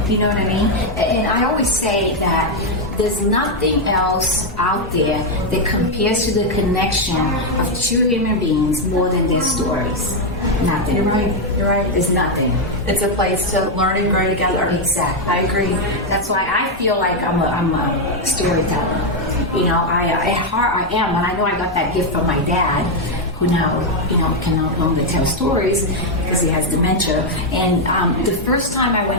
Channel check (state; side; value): normal; both; correlation 0.02